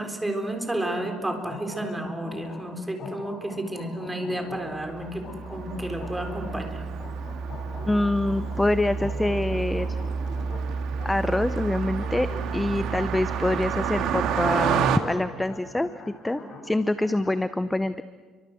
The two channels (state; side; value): normal; both; correlation 0.85